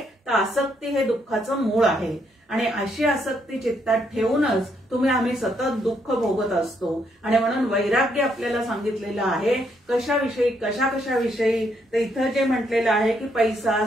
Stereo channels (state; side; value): normal; both; correlation 0.74